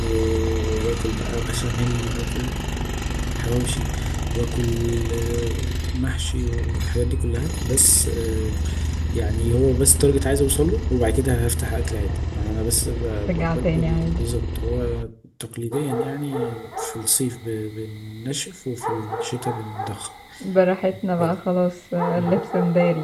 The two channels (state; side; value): identical; both; correlation 1.00